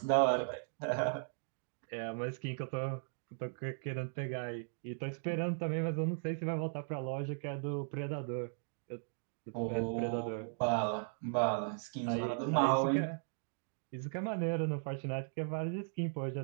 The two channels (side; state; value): left; silent; digital silence